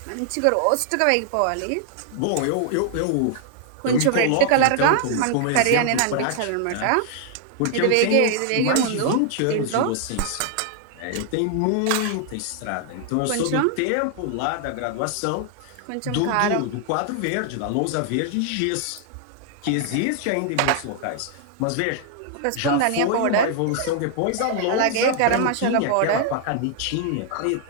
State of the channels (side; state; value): both; different; correlation 0.00